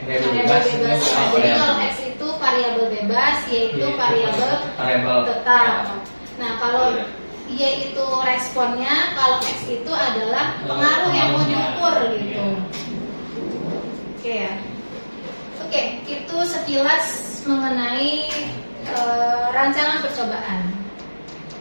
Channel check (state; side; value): inverted; both; correlation -1.00